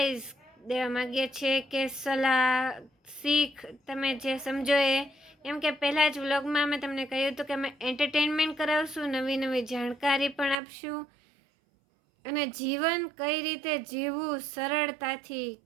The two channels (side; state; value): left; drops out; at 10.6 s